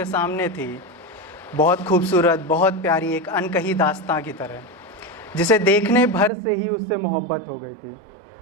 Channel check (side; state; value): left; drops out; at 6.3 s